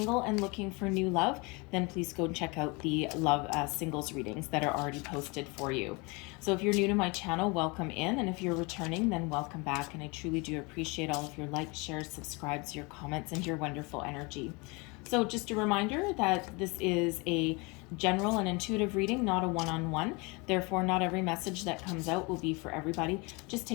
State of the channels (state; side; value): quieter; right; 28.1 dB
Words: and looking for new love, then please go and check out the love singles readings that are already posted for you. So if you're new to my channel, welcome in, and if you're returning, then welcome back, and I truly do appreciate all of your likes, shares, subscribes, your comments, and your wonderful energy. So just a reminder that this is a general and intuitive reading, not a one-on-one. Therefore, not every message that comes out will be for everybody. Just